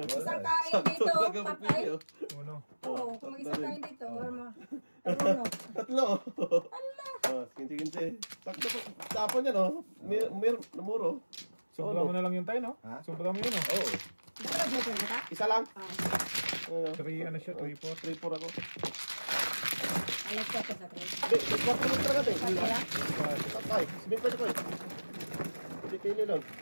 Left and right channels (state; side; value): inverted; both; correlation -1.00